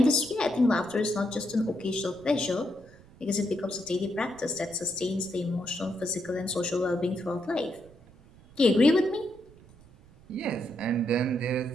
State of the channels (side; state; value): right; noise; rumble, 24 dB below the sound